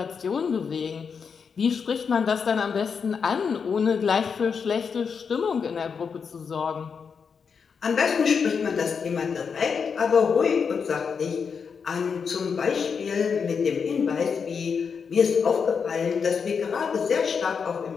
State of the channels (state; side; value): quieter; right; 6.1 dB